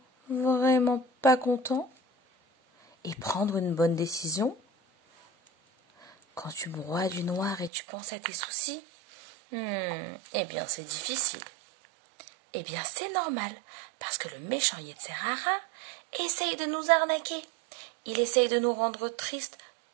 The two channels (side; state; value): left; drops out; at 7.7 s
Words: pas content? Et prendre une bonne décision? Quand tu broies du noir et tu penses à tes soucis? Eh bien, c'est difficile. Eh bien, c'est normal, parce que le méchant Yetzer Hara essaye de nous arnaquer. Il essaye de nous rendre tristes